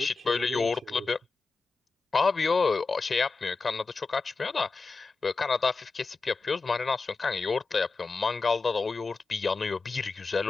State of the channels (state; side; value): quieter; right; 4.2 dB